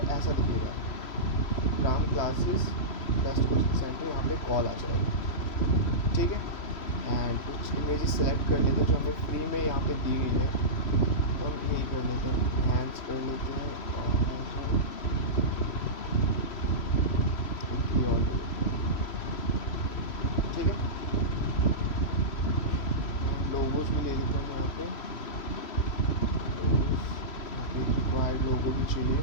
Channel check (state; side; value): late; right; 3.0 ms